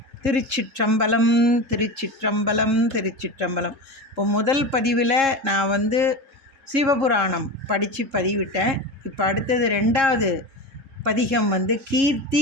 திருச்சிற்றம்பலம் திருச்சிற்றம்பலம் திருச்சிற்றம்பலம். இப்போ முதல் பதிவில் நான் சிவபுராணம் படித்து பதிவிட்டேன். இப்போ அடுத்தது 2வது பதிகம்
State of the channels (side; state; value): left; late; 3.7 ms